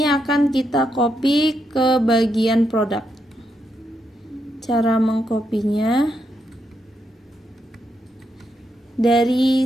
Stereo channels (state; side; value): normal; both; correlation 0.81